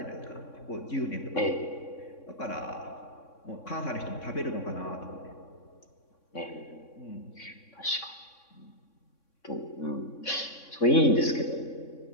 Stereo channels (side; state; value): right; late; 3.6 ms